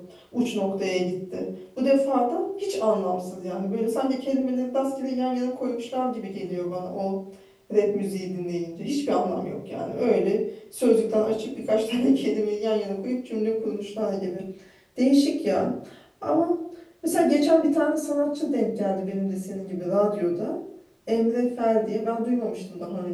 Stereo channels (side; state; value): both; identical; correlation 1.00